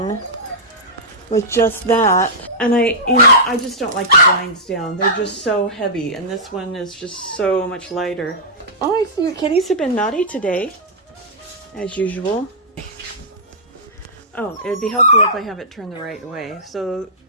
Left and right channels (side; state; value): both; normal; correlation -0.13